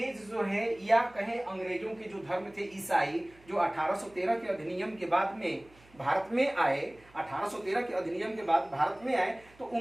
जो है, या कहें अंग्रेजों के जो धर्म थे ईसाई, जो 1813 के अधिनियम के बाद में भारत में आए, 1813 के अधिनियम के बाद भारत में आए, तो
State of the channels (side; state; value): right; noise; hum, 27 dB below the sound